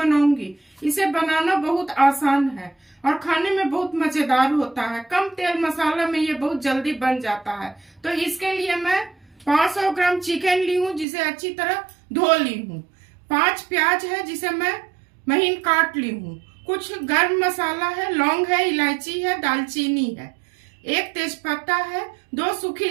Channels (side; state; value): left; drops out; at 11.1 s